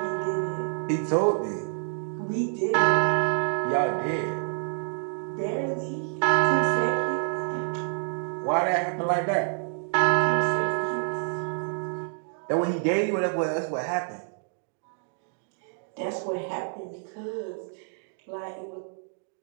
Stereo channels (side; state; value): left; silent; digital silence